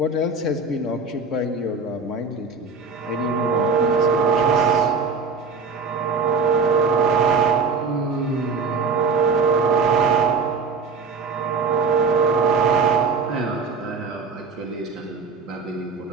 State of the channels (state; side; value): quieter; left; 4.6 dB